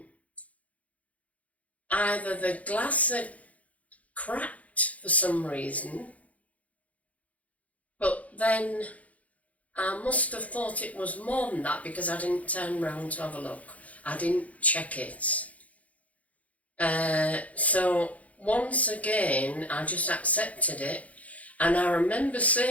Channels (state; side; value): late; right; 0.069 ms